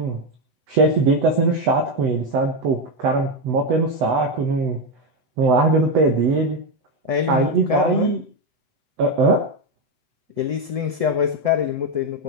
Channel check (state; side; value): late; left; 7.9 ms